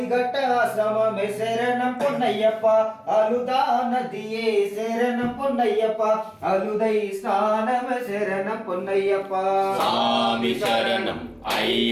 ஆசிரமமே சரணம் பொன்னையப்பா அழுதா நதியே சரணம் பொன்னையப்பா அழுதை ஸ்நானமே சரணம் பொன்னையப்பா சாமி சரணம்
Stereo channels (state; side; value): identical; both; correlation 1.00